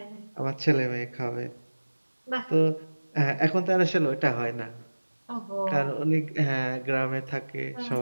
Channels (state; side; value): inverted; both; correlation -1.00